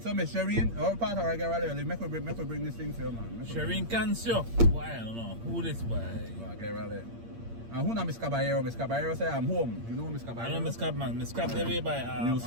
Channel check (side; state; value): left; late; 8.7 ms